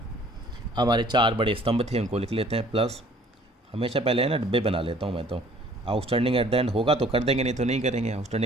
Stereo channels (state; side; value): normal; both; correlation 0.55